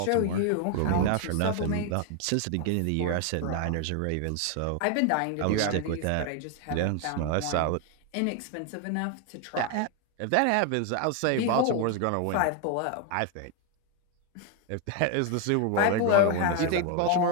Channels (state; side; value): different; both; correlation 0.01